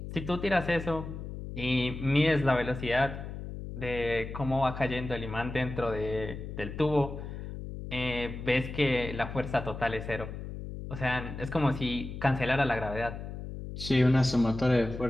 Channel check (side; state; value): left; noise; hum, 8 dB below the sound